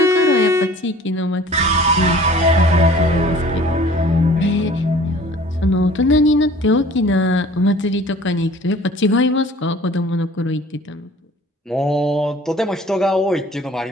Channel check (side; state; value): both; normal; correlation 0.49